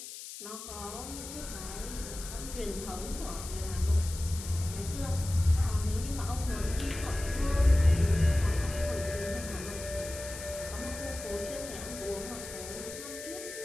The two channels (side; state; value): left; noise; hiss, 11 dB below the sound